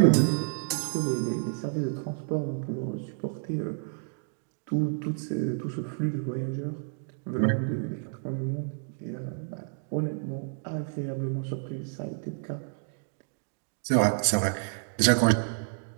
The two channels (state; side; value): silent; left; digital silence